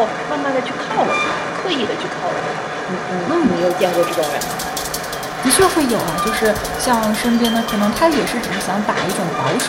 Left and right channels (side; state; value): both; identical; correlation 1.00